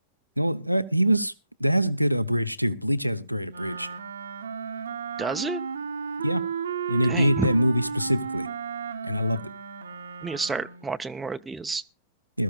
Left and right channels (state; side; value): inverted; both; correlation -0.75